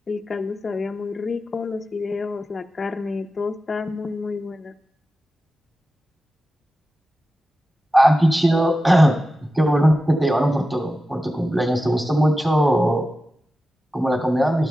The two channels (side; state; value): both; normal; correlation 0.93